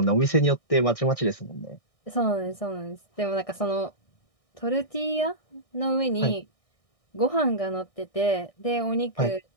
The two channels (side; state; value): right; late; 1.6 ms